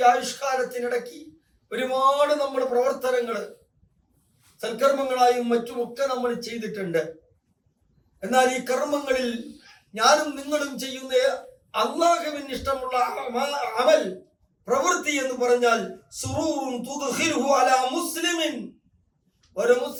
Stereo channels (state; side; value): identical; both; correlation 1.00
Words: ആയുഷ്കാലത്തിനിടയ്ക്ക് ഒരുപാട് നമ്മൾ പ്രവർത്തനങ്ങൾ സൽക്കർമ്മങ്ങളായും മറ്റുമൊക്കെ നമ്മൾ ചെയ്തിട്ടുണ്ട്. എന്നാൽ ഈ കർമ്മങ്ങളിൽ ഞാനും നിങ്ങളും ചെയ്യുന്ന അല്ലാഹുവിന് ഇഷ്ടമുള്ള അമൽ, പ്രവൃത്തി എന്ന് പറഞ്ഞാൽ സുറൂറുൻ തുദ്ഖിലുഹു അലാ മുസ്ലിമിൻ, ഒരു